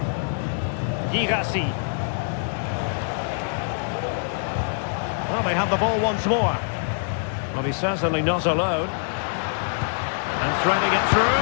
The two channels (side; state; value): right; silent; digital silence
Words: Girassi. Well, they have the ball once more. Well, he's certainly not alone. And threading it through.